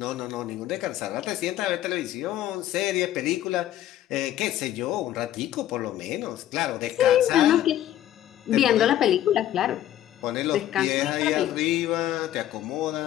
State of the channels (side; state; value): right; quieter; 12.5 dB